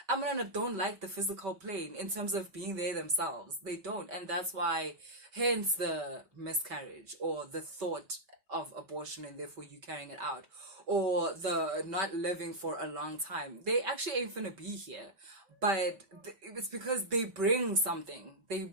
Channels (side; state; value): left; late; 5.2 ms